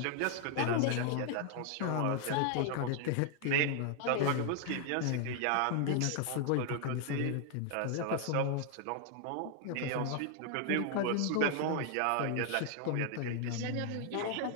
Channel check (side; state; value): both; different; correlation 0.00